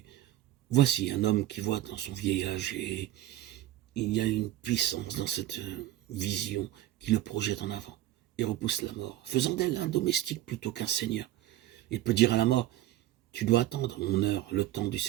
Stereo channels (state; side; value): quieter; left; 14.1 dB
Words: Voici un homme qui voit dans son vieillage et il y a une puissance dans cette vision qui le projette en avant et repousse la mort, faisant d'elle un domestique plutôt qu'un seigneur. Il peut dire à la mort, tu dois attendre mon heure, le temps du